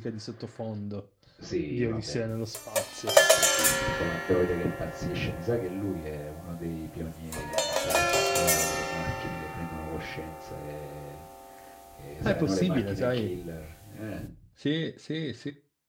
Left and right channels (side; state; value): both; identical; correlation 1.00